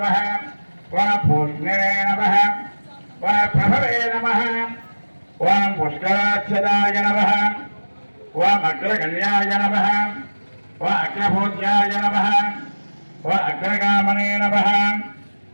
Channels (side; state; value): both; inverted; correlation -1.00